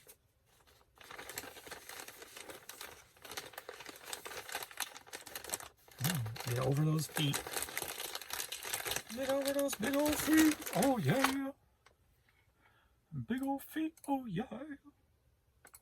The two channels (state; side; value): identical; both; correlation 1.00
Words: Get over those feet. Get over those big old feet. Oh, yeah. Big old feet. Oh, yeah.